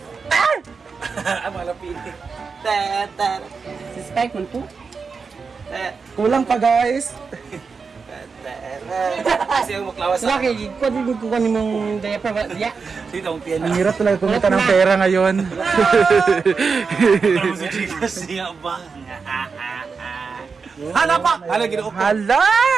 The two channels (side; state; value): left; quieter; 5.1 dB